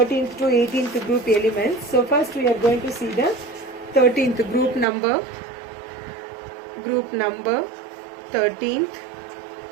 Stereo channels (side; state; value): left; drops out; at 4.9 s